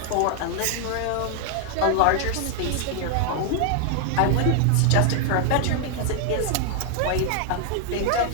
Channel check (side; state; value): both; different; correlation 0.00